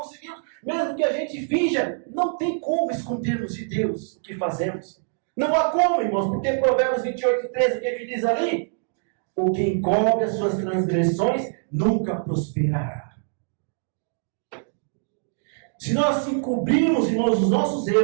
mesmo que a gente finja, não tem como escondermos de Deus o que fazemos. Não há como, irmãos, porque Provérbios 28:13, o que diz ali? O que encobre as suas transgressões nunca prosperará. Se nós encobrirmos, irmãos, os nossos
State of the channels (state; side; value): silent; left; digital silence